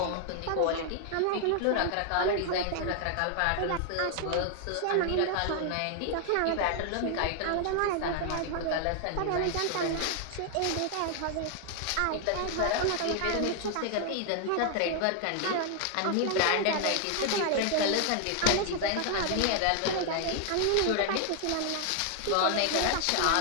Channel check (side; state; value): both; different; correlation 0.00